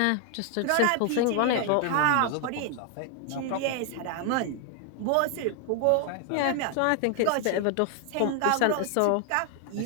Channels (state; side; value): different; both; correlation 0.00